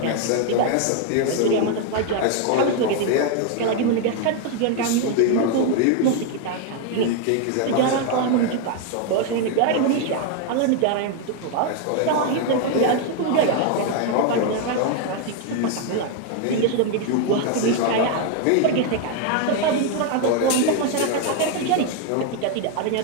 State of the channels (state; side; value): different; both; correlation 0.01